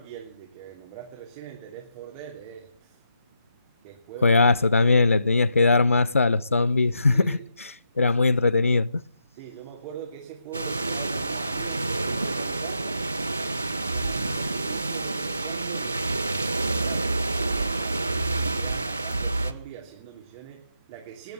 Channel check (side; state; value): both; inverted; correlation -0.82